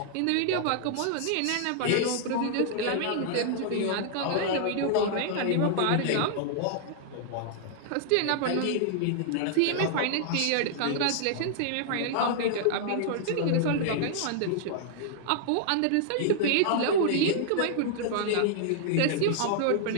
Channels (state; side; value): different; both; correlation -0.01